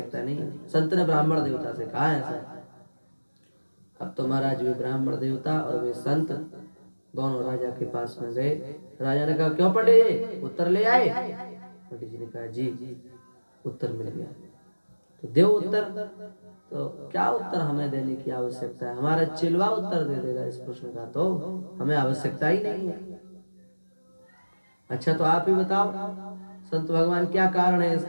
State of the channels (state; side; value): inverted; both; correlation -1.00